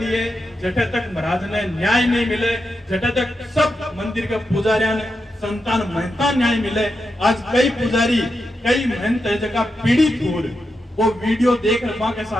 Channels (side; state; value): both; normal; correlation 0.87